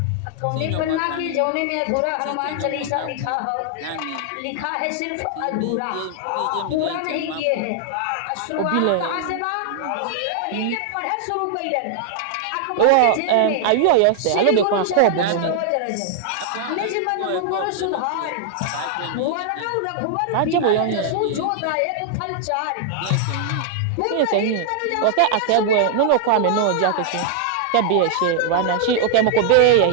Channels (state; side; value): different; both; correlation -0.01